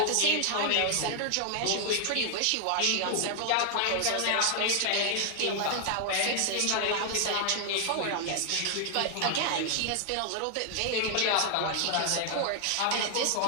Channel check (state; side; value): different; both; correlation 0.00